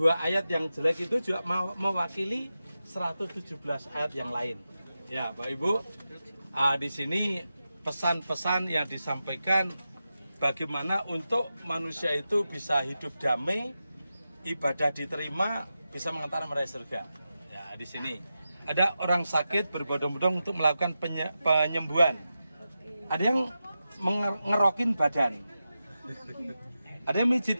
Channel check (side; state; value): both; inverted; correlation -0.91